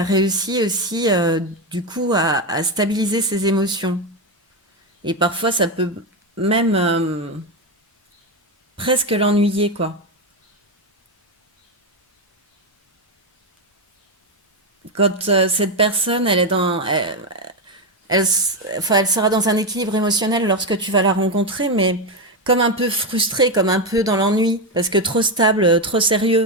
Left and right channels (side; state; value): both; normal; correlation 0.10